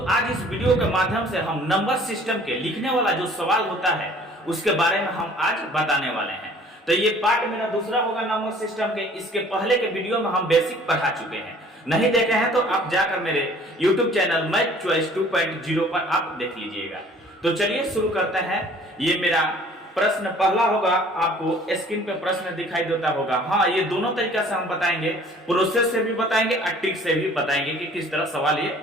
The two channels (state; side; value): normal; both; correlation 0.53